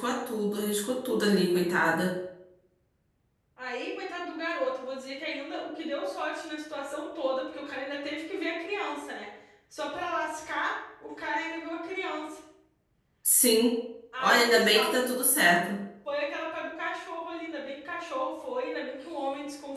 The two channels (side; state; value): both; identical; correlation 1.00